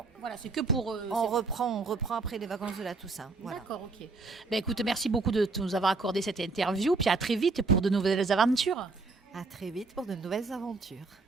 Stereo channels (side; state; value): left; quieter; 3.8 dB